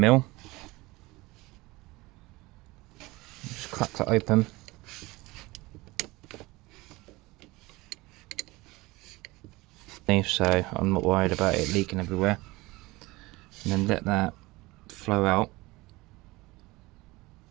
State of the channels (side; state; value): left; quieter; 21.5 dB